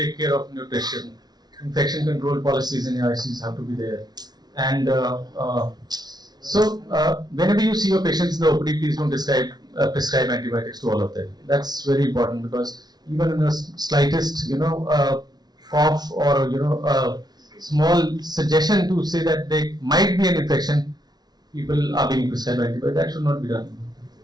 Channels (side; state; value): left; late; 0.19 ms